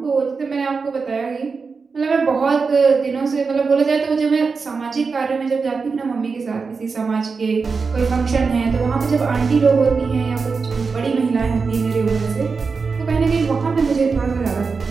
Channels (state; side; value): quieter; left; 4.8 dB